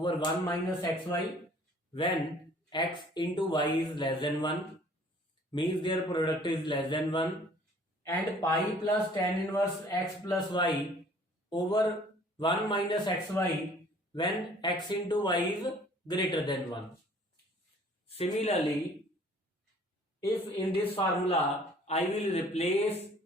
1 minus xy when x into y is less than 1, means their product is less than 1, and pi plus tan inverse x plus y over 1 minus xy when x into y is greater than 1. Similarly, if in this formula I will replace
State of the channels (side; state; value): both; normal; correlation 0.54